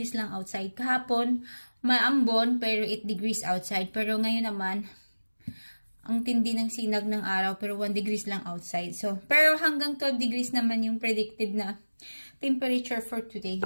lang outside. Kahapon, maambon, pero 8 degrees outside. Pero ngayon naman, ang tindi ng sinag ng araw, pero 1 degrees lang outside. So, pero hanggang 12 degrees naman yung predicted na temperature for today.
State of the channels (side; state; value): both; inverted; correlation -1.00